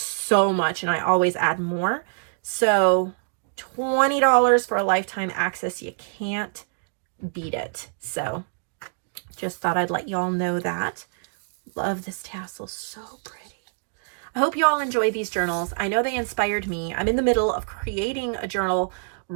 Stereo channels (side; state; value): left; silent; digital silence